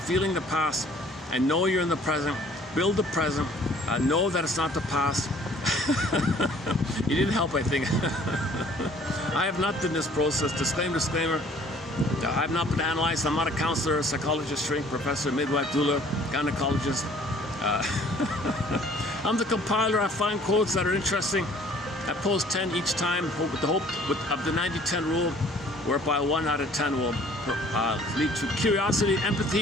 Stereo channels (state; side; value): normal; both; correlation 0.55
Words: feeling the past, and know you're in the present. Build the present, know that it's not the past. You didn't help, I think. I have not done this process. Disclaimer. I have not been analyzed. I'm not a counselor, psychologist, shrink, professor, midwife, doula, gynecologist. I'm the compiler. I find quotes that are interesting. I post 10 each time with the hope of the 90-10 rule, whereby 1 out of 10 will lead to curiosity,